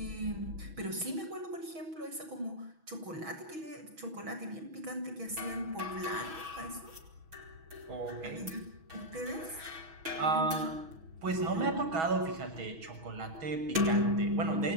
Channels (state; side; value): late; left; 6.2 ms